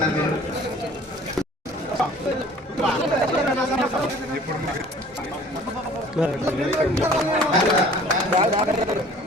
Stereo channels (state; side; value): normal; both; correlation 0.50